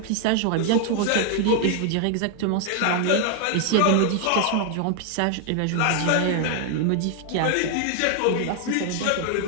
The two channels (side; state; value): both; different; correlation 0.00